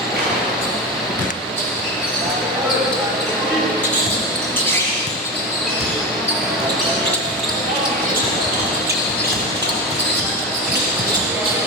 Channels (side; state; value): both; normal; correlation 0.21